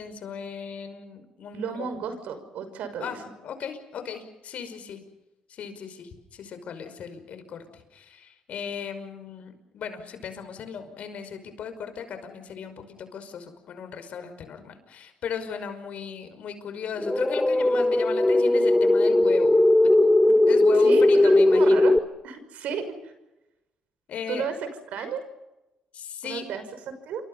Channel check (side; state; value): both; normal; correlation 0.94